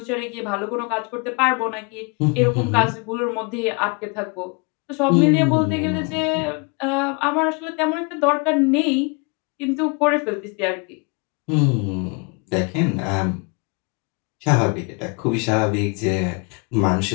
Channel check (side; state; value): right; quieter; 32.7 dB